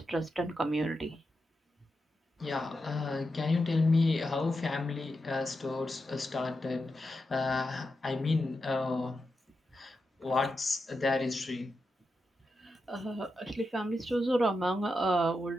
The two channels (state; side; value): normal; both; correlation 0.88